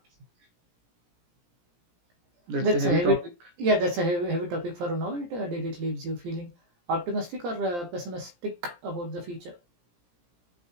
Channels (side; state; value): left; late; 17 ms